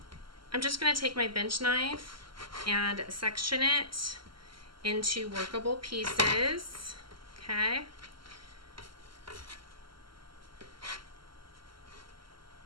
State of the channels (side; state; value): left; late; 0.73 ms